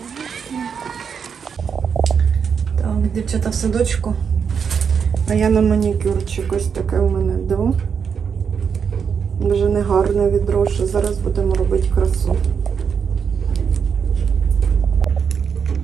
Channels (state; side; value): quieter; left; 6.7 dB